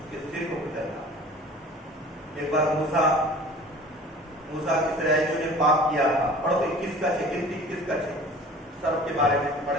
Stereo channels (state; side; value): normal; both; correlation 0.44